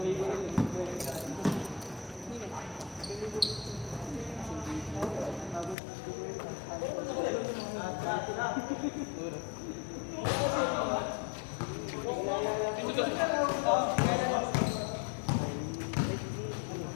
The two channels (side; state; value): right; drops out; at 5.8 s